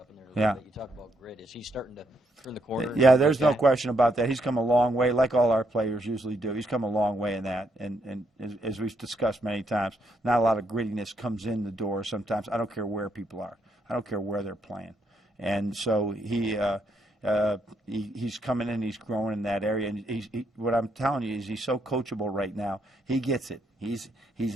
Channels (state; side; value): normal; both; correlation 0.76